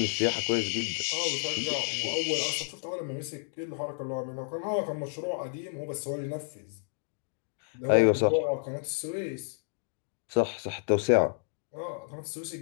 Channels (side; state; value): right; silent; digital silence